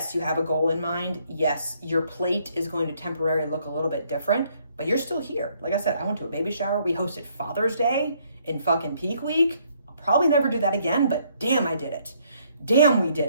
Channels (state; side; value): inverted; both; correlation -0.68